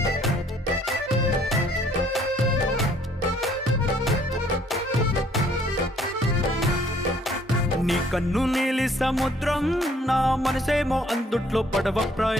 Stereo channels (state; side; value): normal; both; correlation 0.61